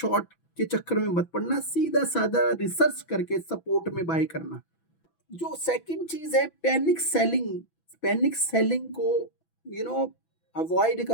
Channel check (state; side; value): late; right; 6.0 ms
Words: के चक्कर में मत पड़ना, सीधा साधा रिसर्च करके सपोर्ट में बाय करना। जो सेकंड चीज है पैनिक सेलिंग, पैनिक सेलिंग को अवॉइड